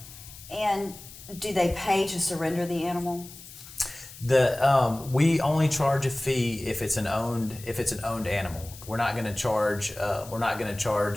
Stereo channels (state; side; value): noise; left; hiss, 17 dB below the sound